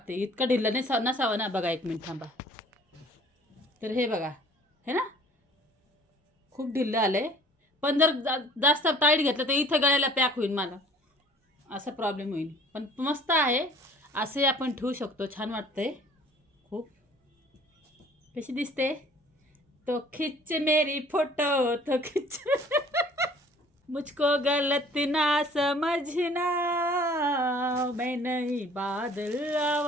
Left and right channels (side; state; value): both; normal; correlation 0.52